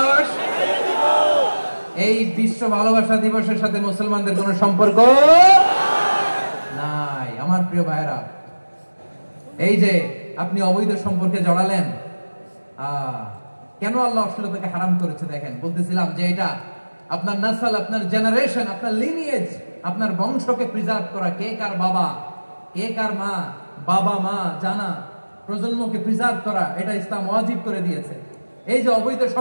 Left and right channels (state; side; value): inverted; both; correlation -1.00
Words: এই বিশ্ব ভালোবাসা দিবসের সাথে মুসলমানদের কোনো সম্পর্ক নাই। আমার প্রিয় ভাইরা, এই যে আপনি অবৈধ সম্পর্কে জড়ালেন, কেন আল্লাহ অশ্লীলতাকে হারাম করেছে দেখেন। বলতেছিলাম যে এটা আপনার নাসল, আপনার জেনারেশন, আপনার লিনিয়েজ, আপনার বংশকে প্রিজার্ভ করা। কে কার বাবা, কে কার মা, বাবা মা জানা, প্রজন্মকে প্রিজার্ভ করা, এটা ইসলাম ওয়াজিব করে দিয়েছে। এই যে অবৈধ